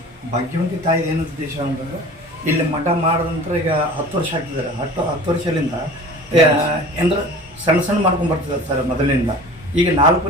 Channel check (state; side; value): normal; both; correlation 0.41